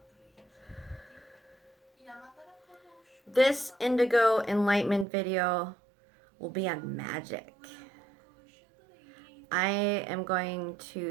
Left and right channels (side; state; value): left; drops out; at 5.1 s